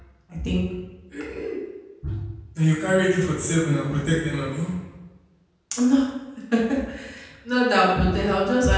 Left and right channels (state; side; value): identical; both; correlation 1.00